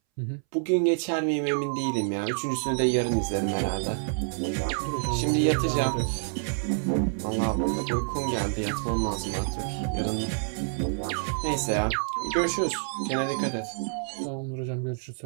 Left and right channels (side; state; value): left; silent; 60 dB below the other